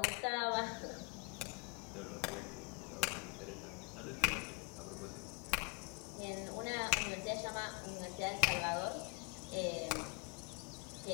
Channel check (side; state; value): right; quieter; 30.1 dB